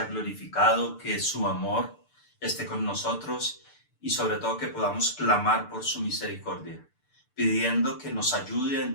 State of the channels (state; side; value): late; right; 6.8 ms